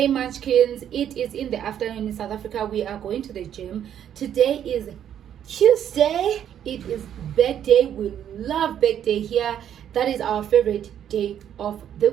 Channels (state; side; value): quieter; left; 9.8 dB